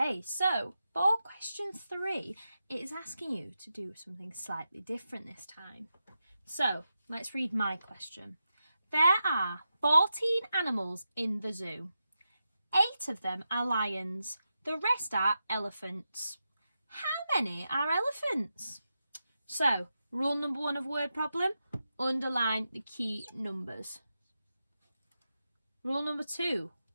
so for question 3, it is asking you to do something slightly different this time. So let's read my question. There are 14 animals in the zoo. 8 of them are lions. The rest are elephants. How many are elephants? So, rule number 1 of word problem, underline the key numbers. Rule number 2,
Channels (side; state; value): both; inverted; correlation -0.89